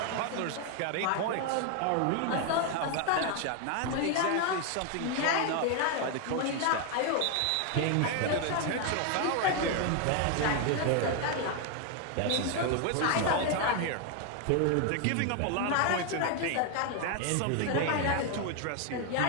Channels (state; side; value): different; both; correlation 0.01